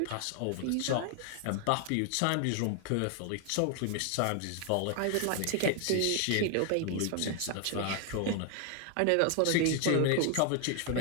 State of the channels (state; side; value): different; both; correlation 0.00